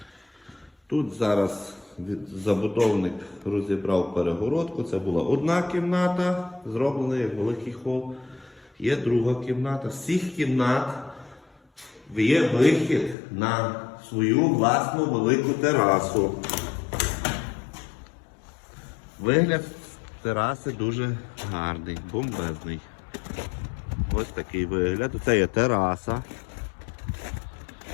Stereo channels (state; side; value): drops out; right; at 13.2 s